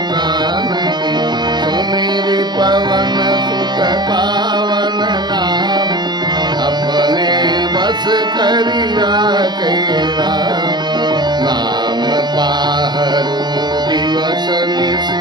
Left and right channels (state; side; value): late; left; 0.21 ms